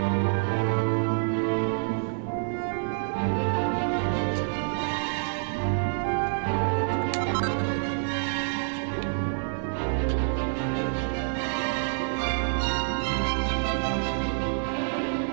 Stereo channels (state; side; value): silent; left; 58 dB below the other